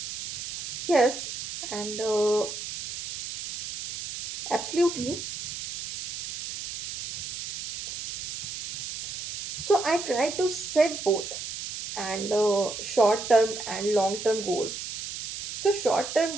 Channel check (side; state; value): right; noise; hiss, 5 dB below the sound